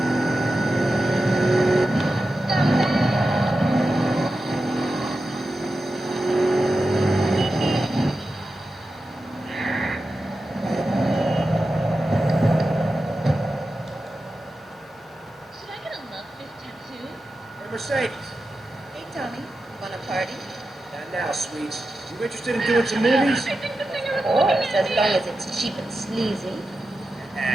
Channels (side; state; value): both; normal; correlation 0.91